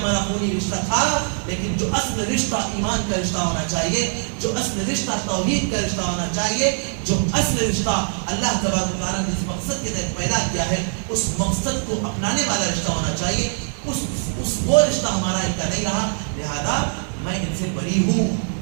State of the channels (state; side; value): silent; left; digital silence